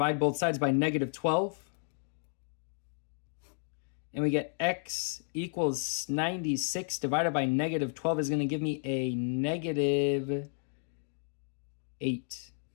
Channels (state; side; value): silent; right; digital silence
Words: both sides by negative 12. And we get x equals 96 divided by negative 12 is going to give me a negative 8.